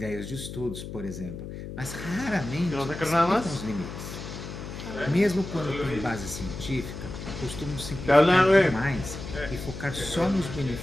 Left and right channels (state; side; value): noise; left; hum, 9 dB below the sound